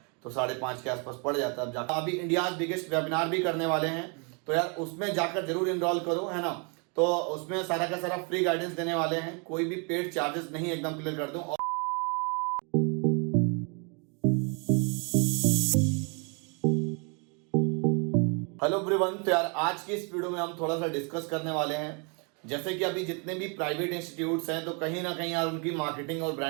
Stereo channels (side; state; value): left; quieter; 35.3 dB